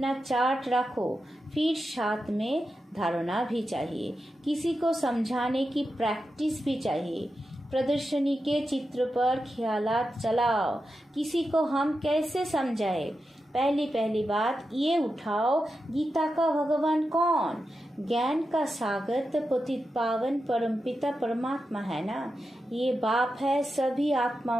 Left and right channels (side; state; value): both; normal; correlation 0.89